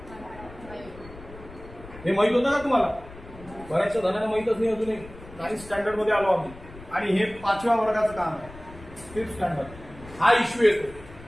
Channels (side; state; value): left; noise; rumble, 18 dB below the sound